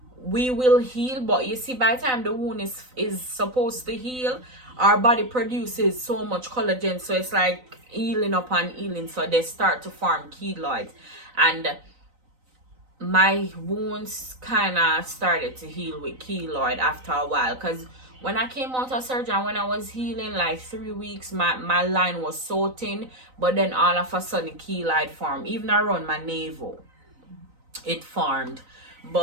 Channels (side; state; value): left; late; 3.9 ms